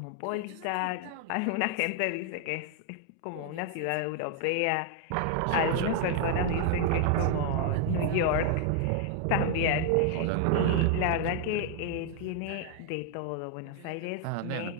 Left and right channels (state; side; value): different; both; correlation 0.00